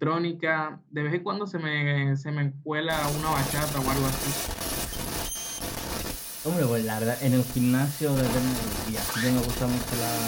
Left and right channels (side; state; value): both; identical; correlation 1.00